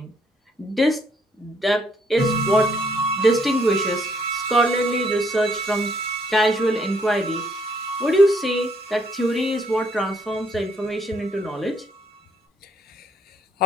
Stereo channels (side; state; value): both; normal; correlation 0.69